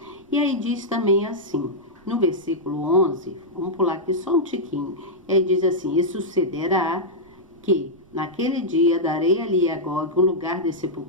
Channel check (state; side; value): noise; right; rumble, 29 dB below the sound